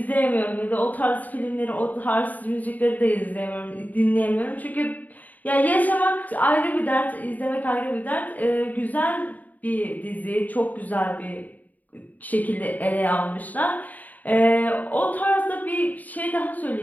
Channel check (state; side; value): late; right; 0.079 ms